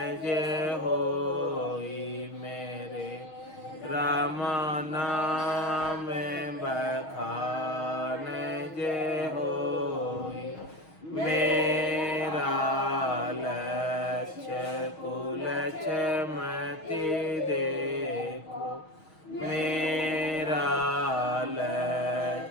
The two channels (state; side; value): late; right; 6.3 ms